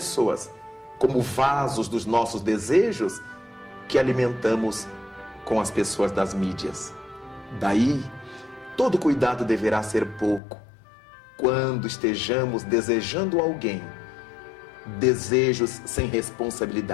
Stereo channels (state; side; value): drops out; right; at 10.4 s